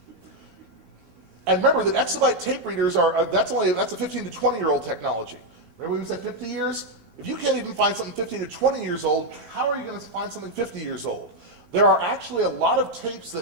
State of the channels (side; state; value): left; late; 18 ms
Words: And remember that exabyte tape readers that's a 15 to 20-year-old technology. Remember we said 50 years? If you can't even find something 15 to 20 years old, how are you going to find something 50 years old? There are actually a lot of tapes